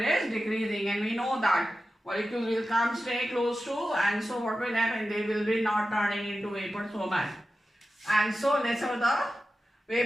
decreasing, and we know that molecules will come stay close to, and so what will happen? They will be not turning into vapor so much, and so lesser the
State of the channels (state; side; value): normal; both; correlation 0.93